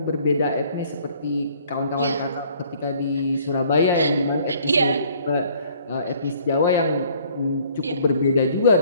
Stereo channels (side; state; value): both; inverted; correlation -0.58